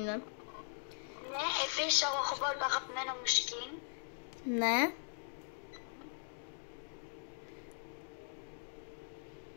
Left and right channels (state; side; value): silent; right; digital silence